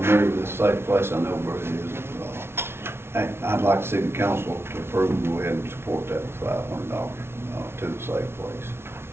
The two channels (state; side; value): late; left; 0.12 ms